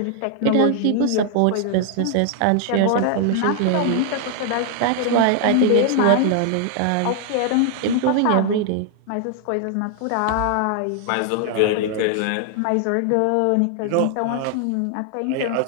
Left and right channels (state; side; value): different; both; correlation 0.00